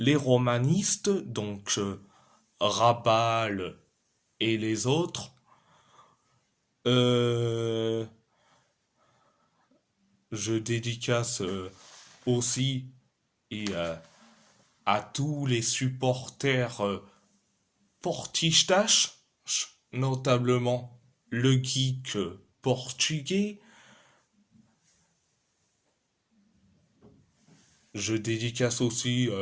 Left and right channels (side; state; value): both; identical; correlation 1.00